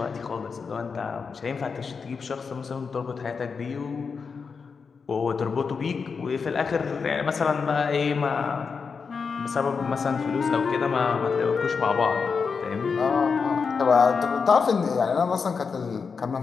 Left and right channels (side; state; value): right; quieter; 5.4 dB